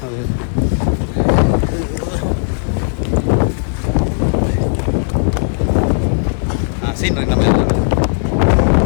அது சீன் நம்ம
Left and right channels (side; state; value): right; silent; digital silence